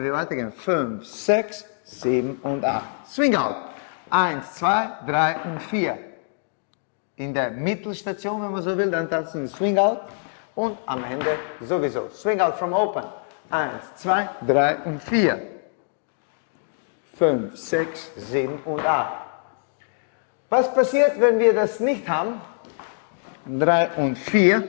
wir weitergehen, 5, 6, 7 und 8. Swing out. 1, 2, 3 und 4. In der Mittelstation, wenn man so will, dann tanzen wir Swing out und am Ende sowieso. Swing out from open. 1, 2, 3 und 4. 5, 6, 7 und 8. Was passiert, wenn wir das nicht haben? 3 und 4.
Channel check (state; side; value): silent; right; digital silence